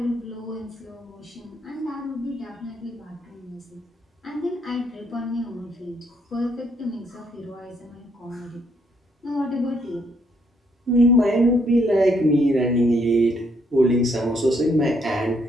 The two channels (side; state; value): both; normal; correlation 0.71